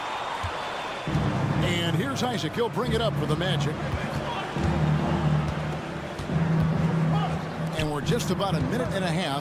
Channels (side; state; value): both; identical; correlation 1.00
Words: And here's Isaac. He'll bring it up for the Magic. And we're just about a minute and a